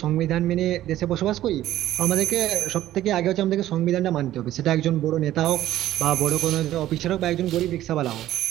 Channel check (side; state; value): left; quieter; 13.7 dB